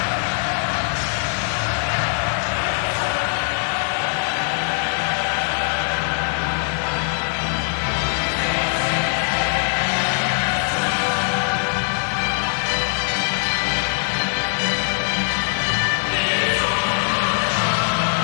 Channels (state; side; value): silent; right; 65 dB below the other